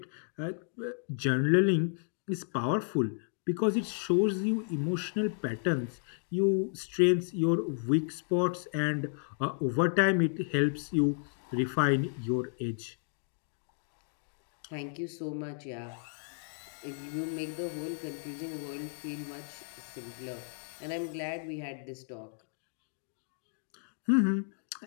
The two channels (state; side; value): silent; right; digital silence